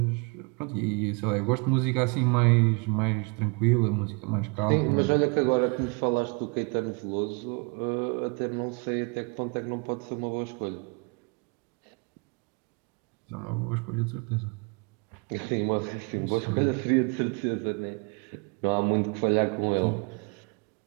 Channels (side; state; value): left; quieter; 32.5 dB